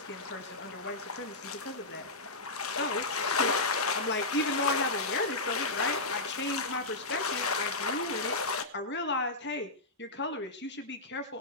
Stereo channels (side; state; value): right; quieter; 3.0 dB